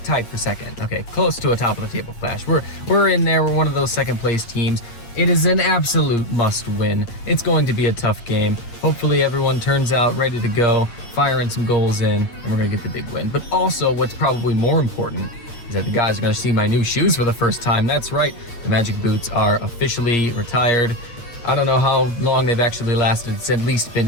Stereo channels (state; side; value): late; right; 8.8 ms